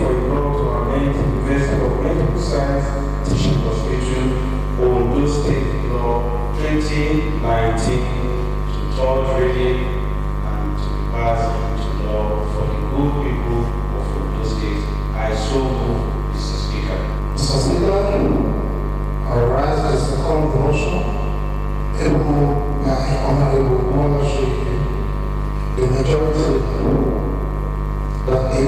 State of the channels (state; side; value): identical; both; correlation 1.00